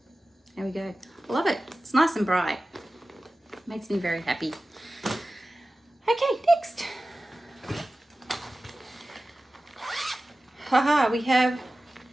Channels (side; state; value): both; normal; correlation 0.96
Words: There we go. I love it. It's nice and bright. Makes me very happy. Okay, next. Haha, we have